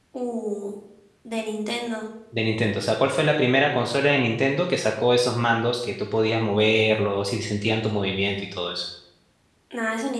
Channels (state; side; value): identical; both; correlation 1.00